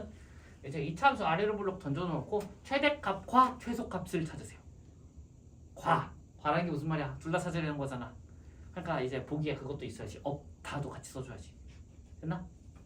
이제 이 참수 아래로 블록 던져놓고 최대값과 최소값을 찾으세요. 과라는 게 무슨 말이야? 둘 다 찾아야 되는 거잖아. 그러니까 이제 보기에 그것도 있어야지. 없다도 같이 써줘야지. 됐나?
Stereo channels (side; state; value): both; identical; correlation 1.00